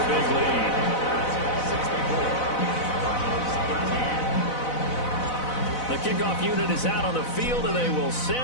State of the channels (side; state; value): right; late; 4.0 ms